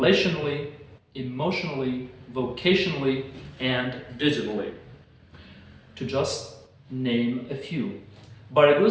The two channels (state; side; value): identical; both; correlation 1.00